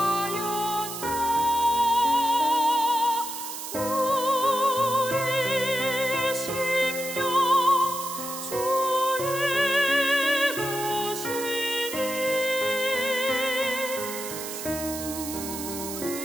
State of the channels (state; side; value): noise; right; hiss, 8 dB below the sound